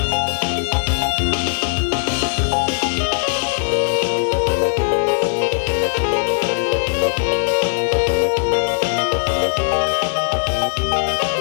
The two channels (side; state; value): right; silent; 67 dB below the other